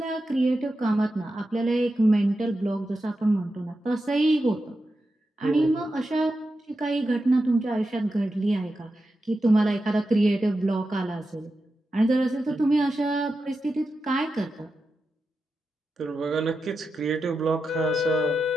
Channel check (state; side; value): normal; both; correlation 0.90